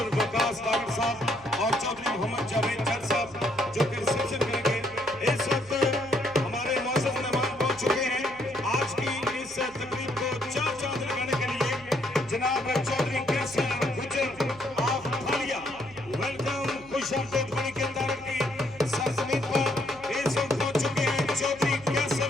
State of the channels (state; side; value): noise; right; hum, 24 dB below the sound